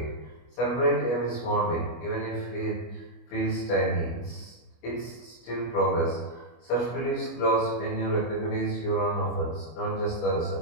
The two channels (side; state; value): right; late; 25 ms